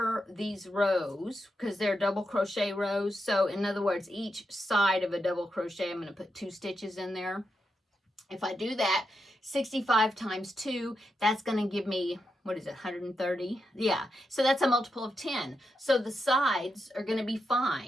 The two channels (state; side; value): normal; both; correlation 0.86